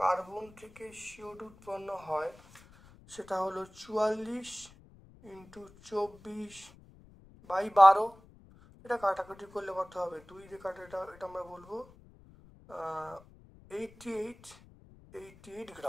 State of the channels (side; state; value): left; noise; rumble, 23 dB below the sound